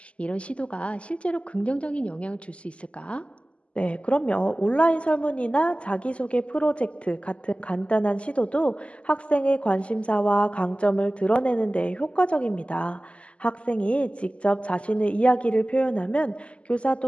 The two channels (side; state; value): right; late; 0.058 ms